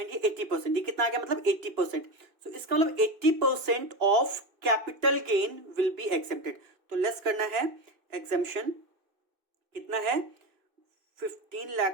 ये 80%, ये कितना आ गया, मतलब 80%। तो इसका मतलब 80% of capital gain will be accepted. तो लेस करना है, एग्जेम्पशन कितना है, 15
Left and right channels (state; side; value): late; left; 2.6 ms